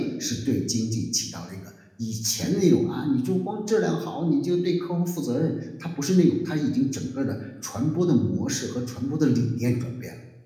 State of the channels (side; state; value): both; identical; correlation 1.00